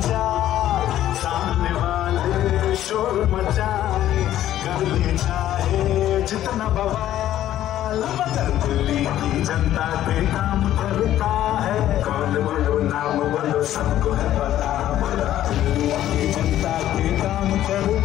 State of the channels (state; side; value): quieter; right; 12.6 dB